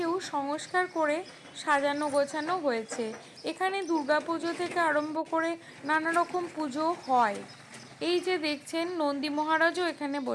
সংস্কার করে সাজানো গোছানো হয়েছে। এখানে দুর্গাপুজো থেকে আরম্ভ করে নানা রকম পুজো হয়। এই যে দেখছেন নন্দী মহারাজও এখানে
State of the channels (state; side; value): identical; both; correlation 1.00